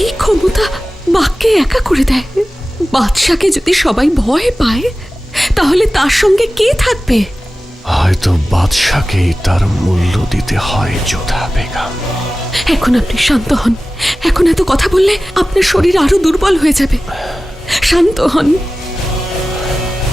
ক্ষমতা বাঘকে একা করে দেয়। বাদশাকে যদি সবাই ভয় পায় তাহলে তার সঙ্গে কে থাকবে? হয়তো বাদশাকেই তার মূল্য দিতে হয় যোধা বেগম। এখন আপনি শান্ত হন। এখন এত কথা বললে আপনার শরীর আরো দুর্বল হয়ে যাবে। শান্ত হন।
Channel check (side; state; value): both; normal; correlation 0.96